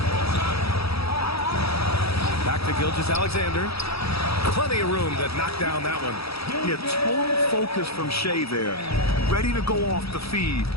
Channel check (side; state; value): right; late; 0.77 ms